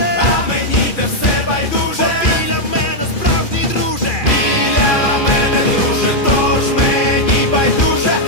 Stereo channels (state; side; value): late; right; 2.4 ms